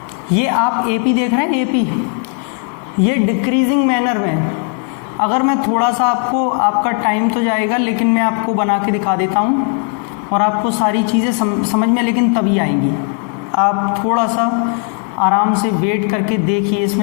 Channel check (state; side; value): quieter; right; 37.3 dB